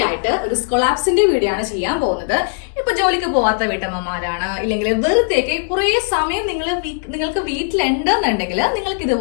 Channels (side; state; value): right; silent; 65 dB below the other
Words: ആയിട്ട് ഒരു സ്കൊളാപ്സിന്റെ വീഡിയോ ആണ് ചെയ്യാൻ പോകുന്നത്. ഇപ്പൊ ജോലിക്ക് പോവാത്ത വീട്ടമ്മമാരാണ്, ഇല്ലെങ്കിൽ വെറുതെയൊക്കെ കുറെ സമയം നിങ്ങൾക്ക് വീട്ടിലുണ്ടെന്നുണ്ടെങ്കിൽ നിങ്ങൾക്ക്